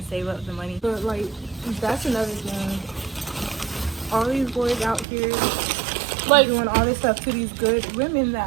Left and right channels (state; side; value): drops out; left; at 5.1 s